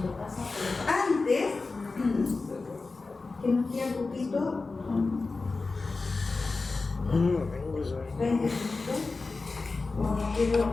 Antes, que nos queda un poquito, 20 minutos, no quiero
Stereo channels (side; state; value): right; quieter; 3.8 dB